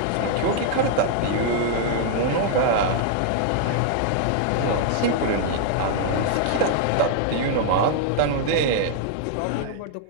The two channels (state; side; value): different; both; correlation -0.01